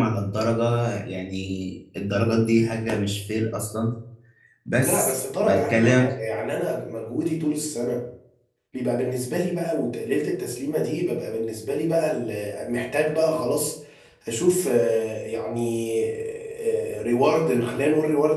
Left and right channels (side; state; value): both; identical; correlation 1.00